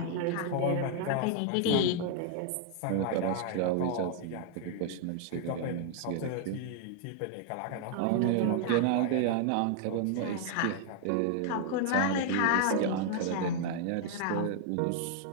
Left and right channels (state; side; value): different; both; correlation 0.00